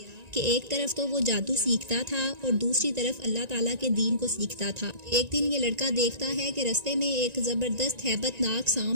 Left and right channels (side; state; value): left; late; 1.9 ms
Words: کہ ایک طرف تو وہ جادو سیکھتا تھا اور دوسری طرف اللہ تعالیٰ کے دین کو سیکھتا تھا۔ ایک دن یہ لڑکا دیکھتا ہے کہ رستے میں ایک زبردست ہیبت ناک